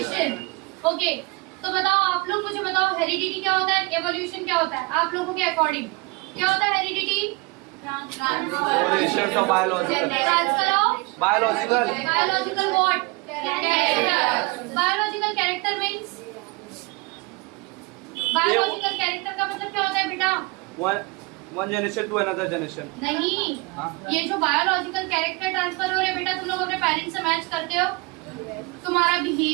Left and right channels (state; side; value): quieter; left; 26.1 dB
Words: ओके, तो बताओ आप लोग, मुझे बताओ हेरिडिटी क्या होता है, एवोल्यूशन क्या होता है आप लोगों के अकॉर्डिंग? क्या होता है heredity? Transfer of biological, transfer of biological what? Character. Biological character means, biological character का मतलब क्या होता है बेटा? One generation to another generation. नहीं, ये जो बायोलॉजिकल कैरेक्टर ट्रांसफर हो रहे हैं बेटा, तुम लोग अपने पेरेंट्स से मैच करते हो। तुम्हारा